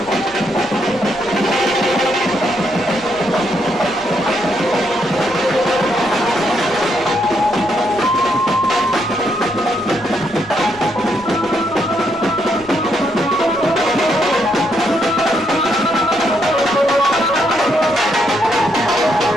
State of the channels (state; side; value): noise; left; rumble, 23 dB below the sound